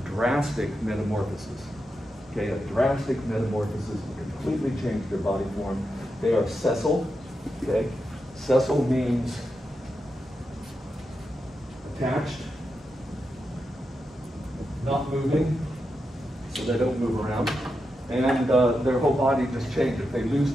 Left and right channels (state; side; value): normal; both; correlation 0.87